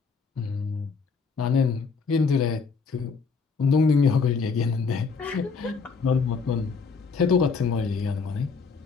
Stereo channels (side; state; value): right; quieter; 5.1 dB